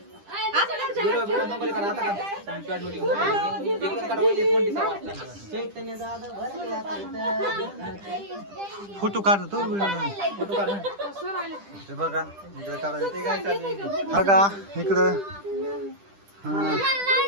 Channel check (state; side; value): late; left; 10 ms